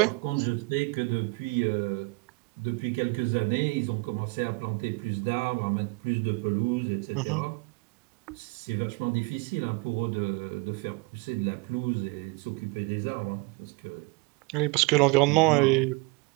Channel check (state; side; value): quieter; left; 27.1 dB